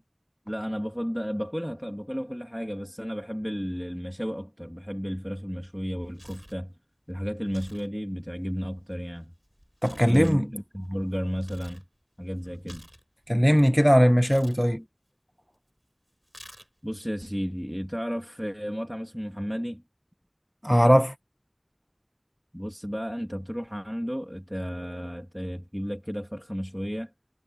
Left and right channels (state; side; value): identical; both; correlation 1.00